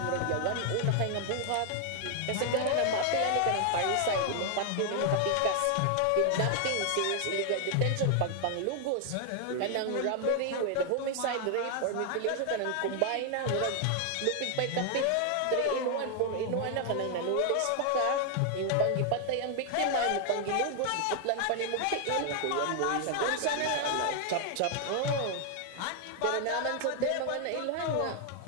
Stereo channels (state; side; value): different; both; correlation 0.00